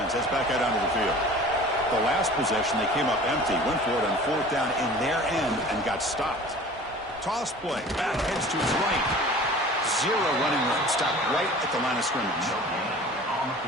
heads back out onto the field. The last possession, they came up empty, went for it on 4th down in their end and got stopped. Toss play, back heads to his right. 0 running room, stopped right at the line of scrimmage.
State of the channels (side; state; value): both; normal; correlation 0.43